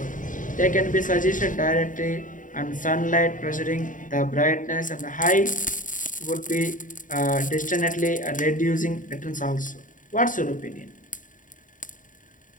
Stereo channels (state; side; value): late; right; 0.38 ms